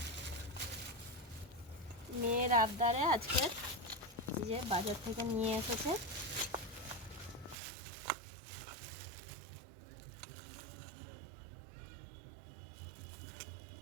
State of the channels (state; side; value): drops out; left; at 7.6 s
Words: মেয়ের আবদারে আজকে যে বাজার থেকে নিয়ে এসেছে।